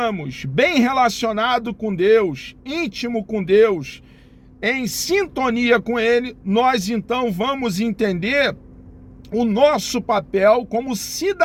bem relacionados com Deus, íntimo com Deus, em sintonia com Ele, nós então vamos entender o nosso papel como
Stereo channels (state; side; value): identical; both; correlation 1.00